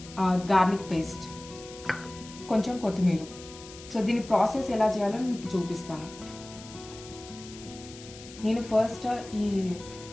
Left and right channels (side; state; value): left; noise; hiss, 17 dB below the sound